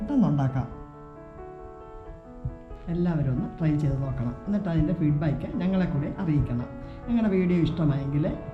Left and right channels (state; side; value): identical; both; correlation 1.00